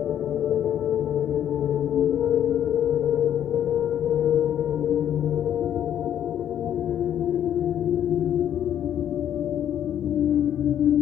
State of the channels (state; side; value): quieter; right; 10.2 dB